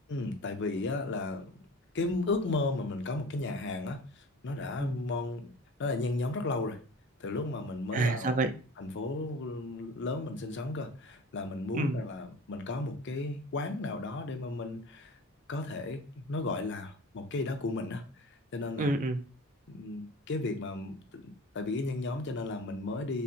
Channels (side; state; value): both; normal; correlation 0.39